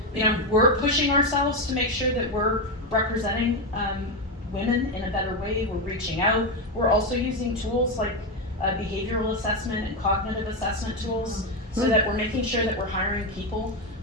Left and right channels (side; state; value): both; normal; correlation 0.09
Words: you know, we're pushing ourselves to make sure that we're representing women in a better way. We're reaching out. We're also using tools like behavioral assessment and cognitive assessment tools so that we're making sure that we're hiring people,